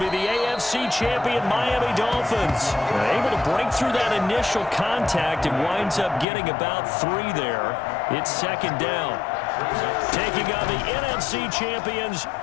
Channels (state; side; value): drops out; right; at 6.2 s